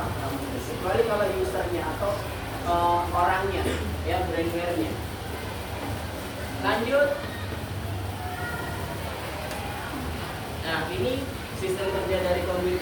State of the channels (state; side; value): identical; both; correlation 1.00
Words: nggak mungkin. Kecuali kalau usernya atau orangnya, ya, brainware-nya. Lanjut. Nah, ini sistem kerja dari